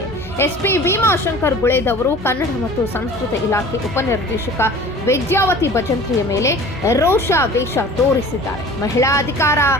ಎಸ್ಪಿ ಭೀಮಾಶಂಕರ್ ಗುಳೇದವರು ಕನ್ನಡ ಮತ್ತು ಸಂಸ್ಕೃತಿ ಇಲಾಖೆ ಉಪನಿರ್ದೇಶಕ ವಿದ್ಯಾವತಿ ಭಜಂತ್ರಿಯ ಮೇಲೆ ರೋಷಾವೇಶ ತೋರಿಸಿದ್ದಾರೆ. ಮಹಿಳಾ ಅಧಿಕಾರ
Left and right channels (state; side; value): normal; both; correlation 0.43